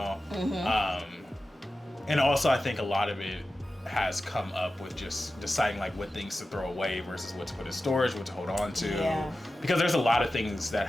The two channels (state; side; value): normal; both; correlation 0.94